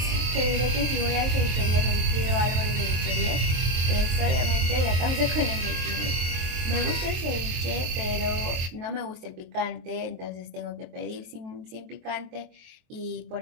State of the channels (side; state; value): left; late; 23 ms